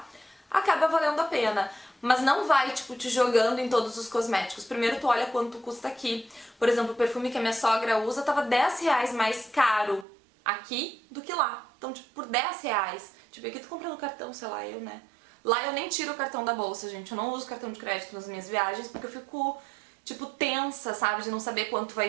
acaba valendo a pena. Mas não vai, tipo, te jogando em todos os cosméticos. Primeiro tu olha quanto custa aqui. Por exemplo, o perfume que a minha sogra usa tava 10 reais mais caro aqui do que lá. Então, tipo, por 10 reais. Tipo, aqui tu compra no cartão, sei lá, eu, né? Lá eu nem tiro o cartão da bolsa, gente. Eu não uso cartão de crédito nas minhas viagens porque eu fico, tipo, tensa, sabe? De não saber quanto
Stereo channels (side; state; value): left; drops out; at 10.1 s